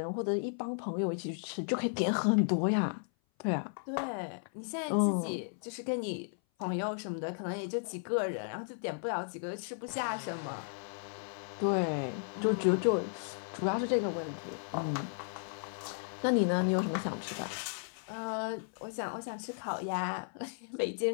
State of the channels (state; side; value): silent; right; 55 dB below the other